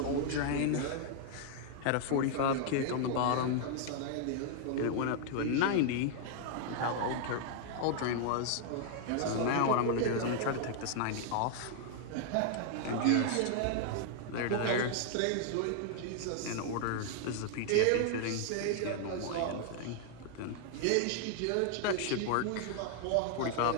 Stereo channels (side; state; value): both; different; correlation 0.00